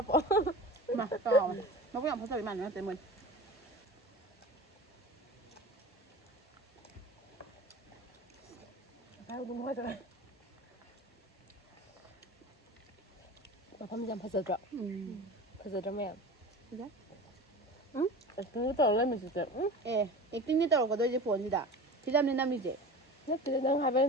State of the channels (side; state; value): both; normal; correlation 0.35